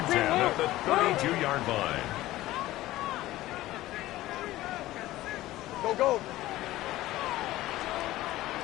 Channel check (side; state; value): right; quieter; 16.3 dB